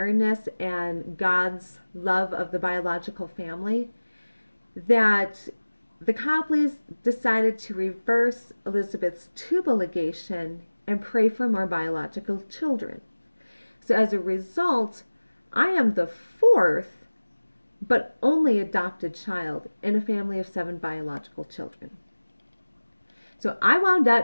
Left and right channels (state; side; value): inverted; both; correlation -1.00